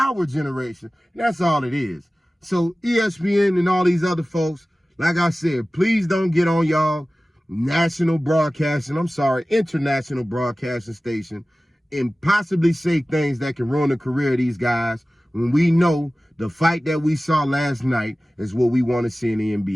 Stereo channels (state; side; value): normal; both; correlation 0.97